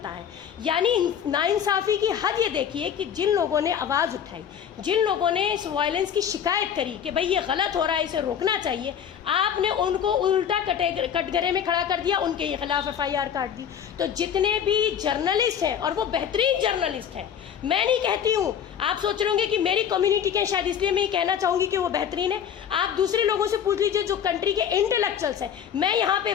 है। यानी नाइंसाफ़ी की हद ये देखिए कि जिन लोगों ने आवाज़ उठाई, जिन लोगों ने इस वायलेंस की शिकायत करी कि भाई ये गलत हो रहा है, इसे रोकना चाहिए, आपने उनको उल्टा कटघरे में खड़ा कर दिया, उनके खिलाफ एफआईआर काट दी। तो जितने भी जर्नलिस्ट हैं, और वो बेहतरीन जर्नलिस्ट हैं, मैं नहीं कहती हूँ, आप सोच रहे होंगे कि मेरी कम्युनिटी के शायद इसलिए मैं ये कहना चाहूँगी कि वो बेहतरीन है। आप दूसरे लोगों से पूछ लीजिए जो कंट्री के इंटेलेक्चुअल्स हैं। मैं यहाँ पे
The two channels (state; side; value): quieter; right; 8.6 dB